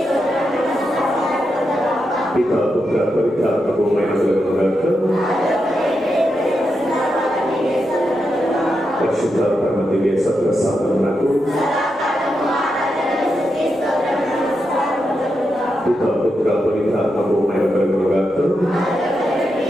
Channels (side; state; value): right; noise; rumble, 29 dB below the sound